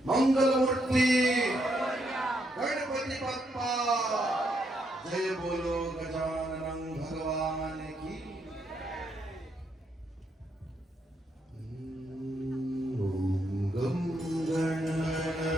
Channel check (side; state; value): both; normal; correlation 0.77